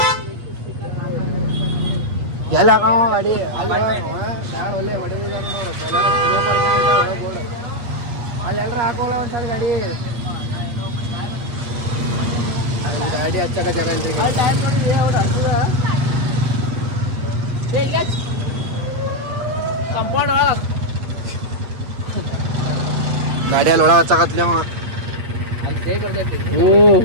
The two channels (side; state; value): left; late; 8.4 ms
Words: ಎಲ್ಲ ಹಾಕವ ಗಾಡಿ ಯಾರು ಒಳ್ಳೆ ಹೊಡೆದಿದ್ದಾರೆ ನೋಡು ಅಲ್ಲಿ ಎಲ್ಲರೂ ಹಾಕೋಲ್ಲ ಒಂದ್ಸಲ ಗಾಡಿ ಅಲ್ಲಿ ಗಾಡಿ ಹಚ್ಚಕ ಜಾಗ ಇಲ್ರಿ ಕಂಪೌಂಡ್ ಗಾಡಿಯಲ್ಲಿ ಒಳಗೆ ಹಚ್ಚಕತ್ಲಿ ಅವ ಅಲ್ಲಿ ಜೈ ಬರ್ತೈತಿ ಓ